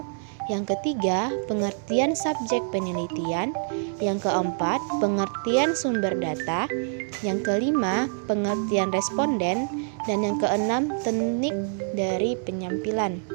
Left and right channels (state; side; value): silent; left; digital silence